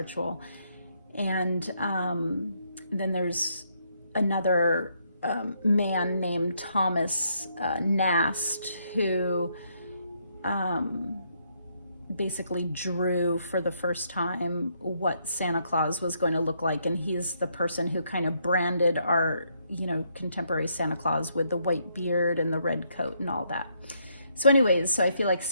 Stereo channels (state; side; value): inverted; both; correlation -0.74